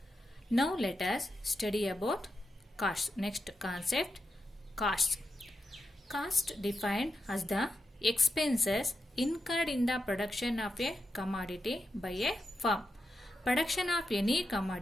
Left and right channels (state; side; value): normal; both; correlation 0.87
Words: Now let us study about costs. Next concept, costs. Cost defined as the expenses incurred in the production of a commodity by a firm. Production of any